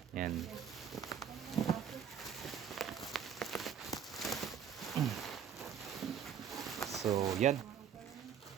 Yan. So yan.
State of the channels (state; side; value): quieter; left; 8.1 dB